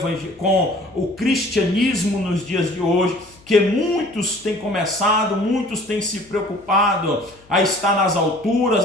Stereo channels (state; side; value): noise; left; hum, 27 dB below the sound